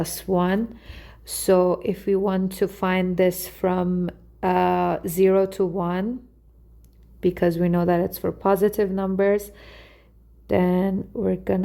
1. So if we want to find this from 0 to 1, because we know that it's for positive numbers, then we're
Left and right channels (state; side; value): identical; both; correlation 1.00